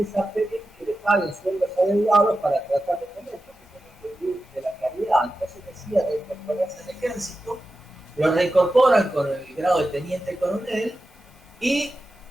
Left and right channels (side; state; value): both; normal; correlation 0.92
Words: a pedir que le paguen sueldos adeudados para tratar de comer, porque tenía que vivir de la caridad. Entonces decía reincorporarse al ejército, lo reincorporan con el grado de teniente coronel y